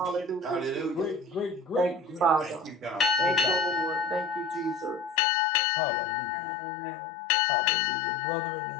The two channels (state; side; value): drops out; right; at 5.2 s